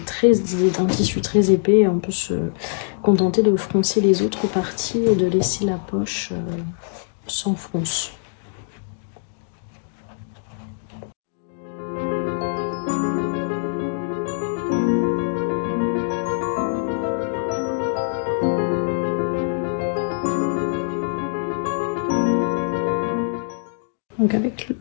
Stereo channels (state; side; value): silent; right; digital silence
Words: un tissu très épais, on peut se contenter de froncer les autres parties et de laisser la poche sans fronce. Donc